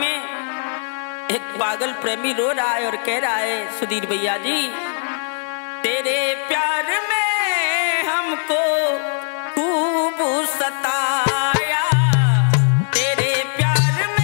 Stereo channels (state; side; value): silent; right; digital silence